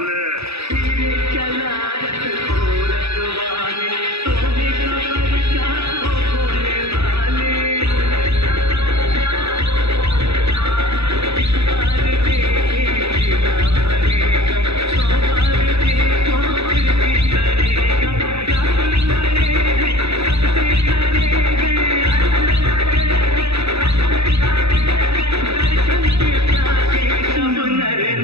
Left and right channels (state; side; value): late; left; 0.79 ms